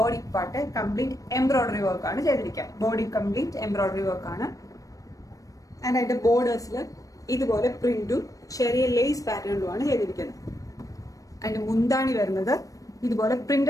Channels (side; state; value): right; late; 0.16 ms